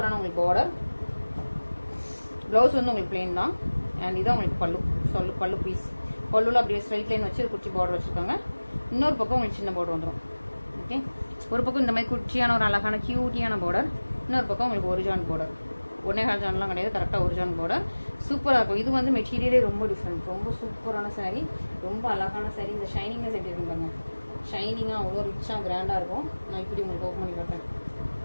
உங்களுக்கு பார்டர். ப்ளவுஸ் வந்து உங்களுக்கு பிளெயின் தான். அண்ட் இதான் உங்களுக்கு பல்லு பீஸ். பல்லுல அப்படியே ஸ்ட்ரைட் லைன் வச்சு குச்சி பார்டர் வச்சுருக்காங்க. இன்னொரு பக்கம் உங்களுக்கு சின்ன பார்டர் வந்துடும். ஓகே, ஒரு பக்கம் இந்த மாதிரி குச்சியான ஒரு அழகான கியூட்டியான பார்டர், இன்னொரு பக்கம் உங்களுக்கு ஒரு ஜான் பார்டர். 1.5 ஜான்லாம் கிடையாது, கரெக்டாக ஒரு ஜான் பார்டர். சூப்பராக இருக்கும். இது வந்து மெட்டீரியலே ரொம்ப டிஃப்ரெண்ட், ரொம்ப சூப்பரான சாரீ, ரொம்ப அழகான சாரீ. இந்த ஷைனிங்னஸ் எப்படி இருக்கும் பாருங்க, ஷைனிங்காக அவ்வளோ ரிச்சாக கிராண்டாக இருக்கும். நான் இப்படி உங்களுக்கு ஓப்பன் பண்ணி காட்டுறேன்.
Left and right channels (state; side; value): inverted; both; correlation -1.00